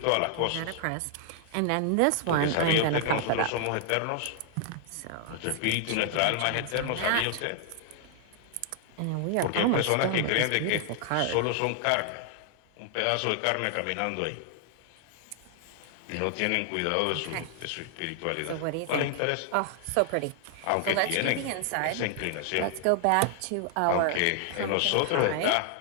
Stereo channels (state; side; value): different; both; correlation 0.00